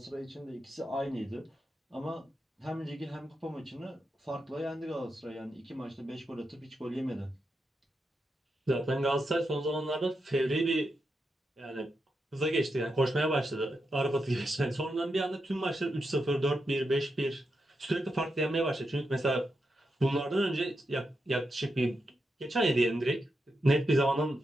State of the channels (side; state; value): both; normal; correlation 0.86